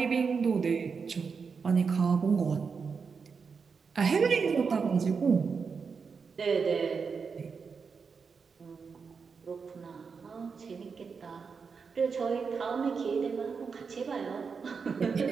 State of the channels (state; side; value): quieter; left; 5.5 dB